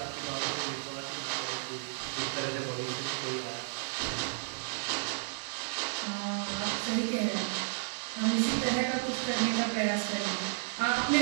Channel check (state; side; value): silent; left; digital silence